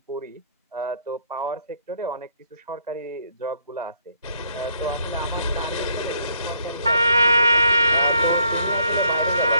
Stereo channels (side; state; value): both; inverted; correlation -0.69